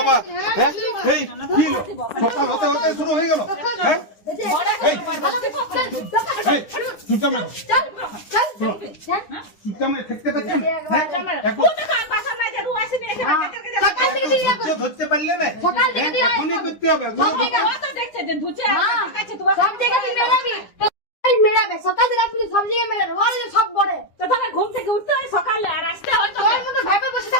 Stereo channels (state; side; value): late; right; 9.9 ms